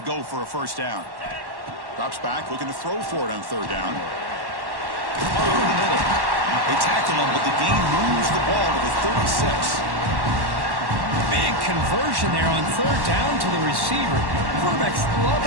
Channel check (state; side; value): late; left; 1.1 ms